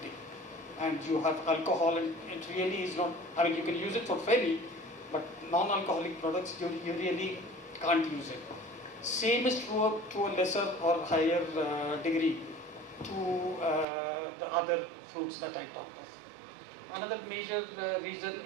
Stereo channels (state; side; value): drops out; left; at 13.9 s